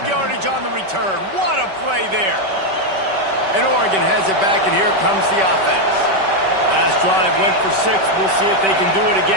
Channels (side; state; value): left; late; 5.2 ms